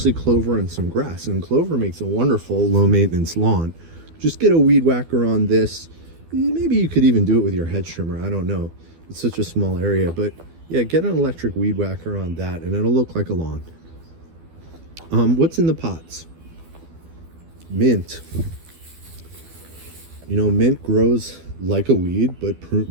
clover and some grass. And clover makes a wonderful low maintenance lawn. Just get a weed whacker on this. Maybe you could even do it with your hedge trimmer. I don't know. It's such a small area. But yeah, get an electric weed whacker on that and it'll look like a lawn. What's in the pots? Mint. You know, mint grows like a weed,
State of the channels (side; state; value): left; late; 12 ms